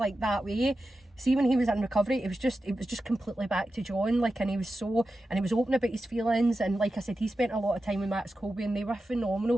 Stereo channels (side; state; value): both; normal; correlation 0.92